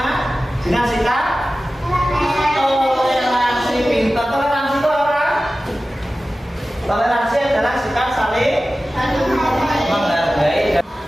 Dengan sikap toleransi. Pintar. Toleransi itu apa? Toleransi adalah sikap saling menghargai.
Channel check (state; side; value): normal; both; correlation 0.95